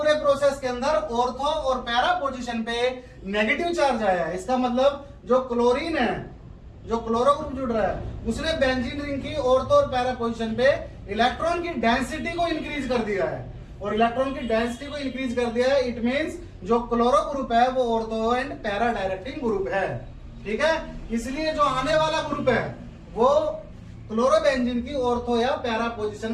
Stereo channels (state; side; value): identical; both; correlation 1.00